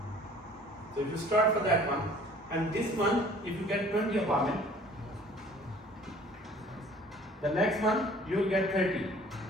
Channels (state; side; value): normal; both; correlation 0.52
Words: So if you start for that one, and this one, if you get 20 apartment, the next month you will get 30,